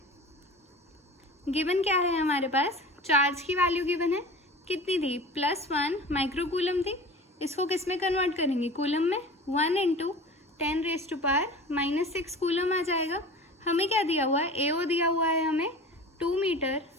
गिवन क्या है हमारे पास, चार्ज की वैल्यू गिवन है, कितनी थी, +1 माइक्रोकूलम थी। इसको किस में कन्वर्ट करेंगे, कूलम में, 1 × 10⁻⁻6 कूलम आ जाएगा। हमें क्या दिया हुआ है, AO दिया हुआ है हमें 2 मीटर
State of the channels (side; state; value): both; normal; correlation 0.38